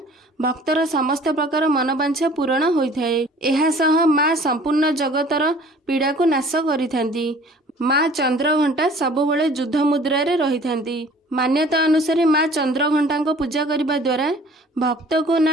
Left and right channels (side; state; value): both; normal; correlation 0.50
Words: भक्तर समस्त प्रकार मनोवांछा पूरण होइथाए। एहा सह माँ संपूर्ण जगतर पीड़ा को नाश करिथांती। माँ चंद्रघंटा सबुबले युद्ध मुद्रा रे रहिथांती। मान्यता अनुसार माँ चंद्रघंटा को पूजा करने द्वारा भक्त को